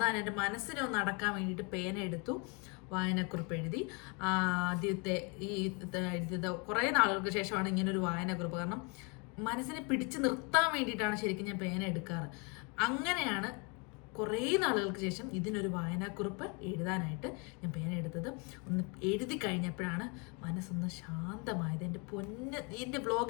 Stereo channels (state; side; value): quieter; right; 31.8 dB